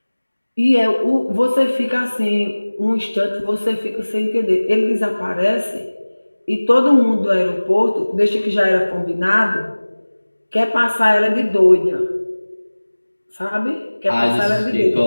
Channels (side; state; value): both; inverted; correlation -1.00